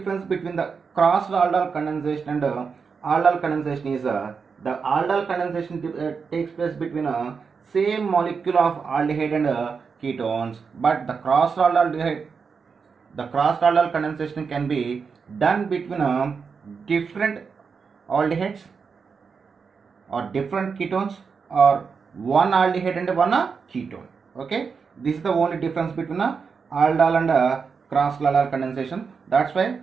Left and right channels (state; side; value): quieter; left; 5.6 dB